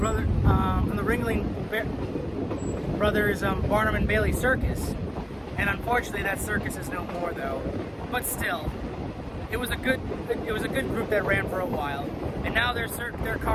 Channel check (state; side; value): identical; both; correlation 1.00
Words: brothers Barnum and Bailey Circus. And unfortunately, that circus is no more, though. But still, it was a good group that ran for a while, and now their